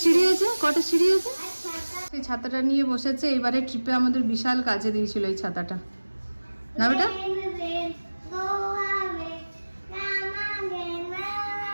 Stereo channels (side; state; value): both; inverted; correlation -1.00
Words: সিঁড়ি আছে? সেই ছাতাটা নিয়ে বসেছে, এবারে ট্রিপে আমাদের বিশাল কাজে দিয়েছিল এই ছাতাটা, না বেটা?